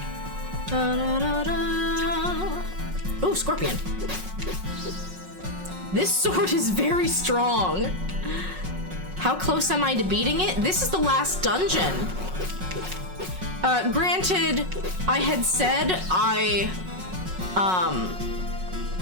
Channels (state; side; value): late; left; 5.4 ms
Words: Ooh, scorpion. This sword is very strong. How close am I to beating it? This is the last dungeon. Granted, I had said I